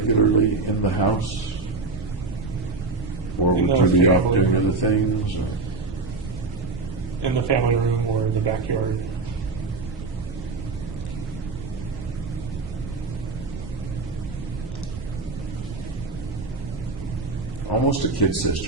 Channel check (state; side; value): quieter; left; 3.7 dB